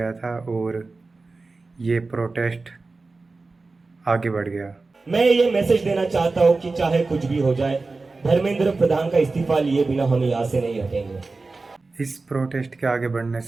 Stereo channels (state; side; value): quieter; left; 3.7 dB